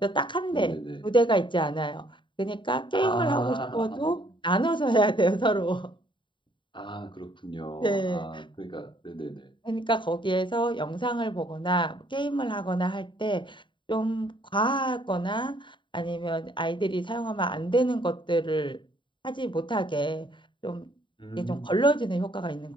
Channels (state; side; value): late; right; 0.23 ms